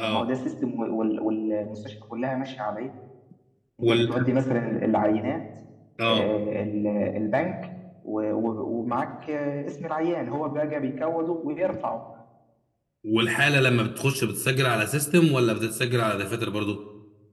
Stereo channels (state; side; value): identical; both; correlation 1.00